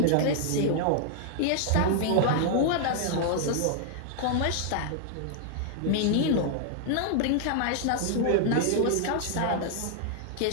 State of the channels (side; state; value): both; different; correlation -0.01